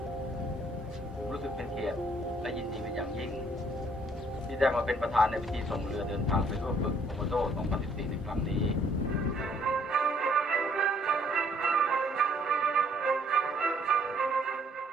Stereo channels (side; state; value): both; normal; correlation 0.64